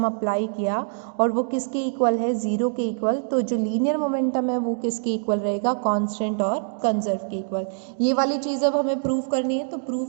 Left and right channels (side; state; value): left; silent; digital silence